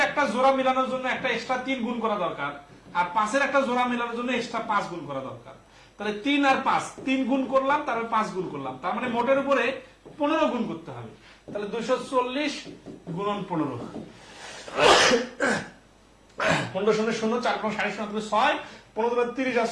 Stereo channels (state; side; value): identical; both; correlation 1.00